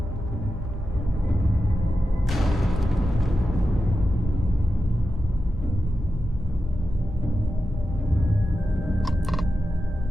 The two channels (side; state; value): both; normal; correlation 0.91